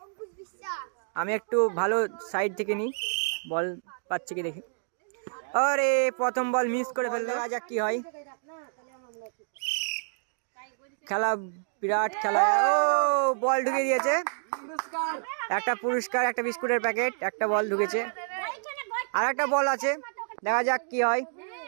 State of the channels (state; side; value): silent; left; digital silence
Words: আমি একটু ভালো সাইড থেকে নিই, বল পাচ্ছি কি দেখি। আরে প্রথম বল মিস করে ফেললো, দেখা যাক কি হয়। খেলা বিরাট খেলা। ও বল ঢুকে দিয়েছে, একটা পুরস্কার, একটা বিস্কুটের প্যাকেট, একটা বল ঢুকেছে, আর একটা বল আছে, দেখা যাক কি হয়।